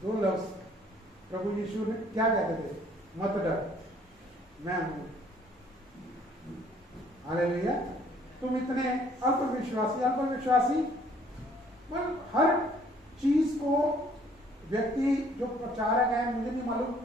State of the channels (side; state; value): both; normal; correlation 0.60